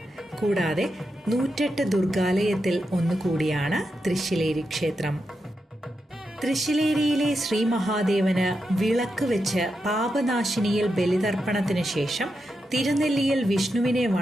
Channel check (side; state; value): both; normal; correlation 0.87